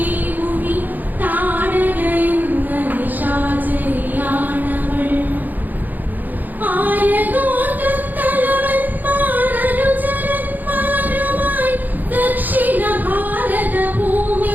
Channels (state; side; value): late; left; 0.085 ms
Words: മുനി താടക എന്ന നിശാചരിയാണവൾ. ആയഗോത്രത്തലവന്മാരനുചരന്മാരുമായി ദക്ഷിണ ഭാരത